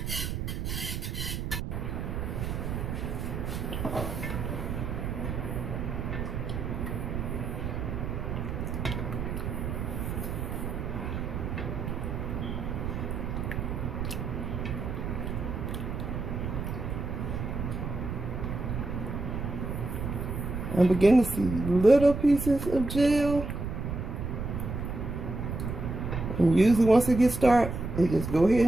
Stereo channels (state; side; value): noise; right; rumble, 3 dB below the sound